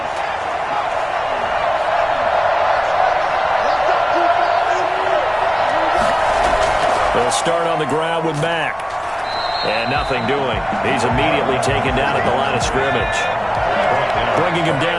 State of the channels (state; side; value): identical; both; correlation 1.00